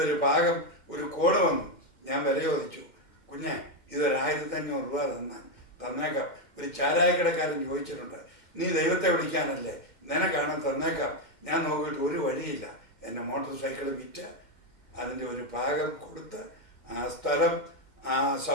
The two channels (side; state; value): right; late; 2.1 ms